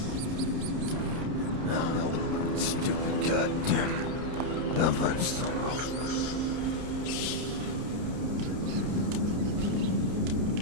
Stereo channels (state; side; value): late; left; 30 ms